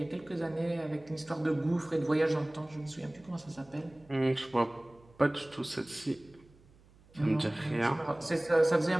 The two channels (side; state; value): right; noise; hum, 27 dB below the sound